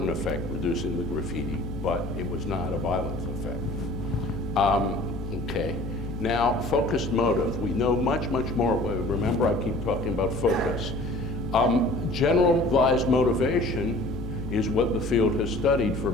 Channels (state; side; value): noise; left; hum, 8 dB below the sound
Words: effect, reducing the graffiti, but it was not a violent effect. Okay. Now, focused motive. We know much, much more. Remember, I keep talking about focus. Generalized motivation is what the field has studied for